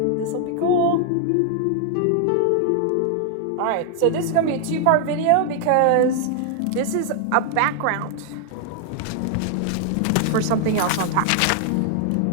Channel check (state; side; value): different; both; correlation 0.00